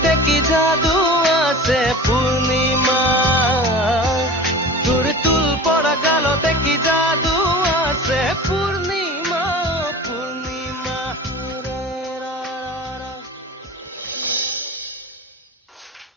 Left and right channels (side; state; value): both; normal; correlation 0.37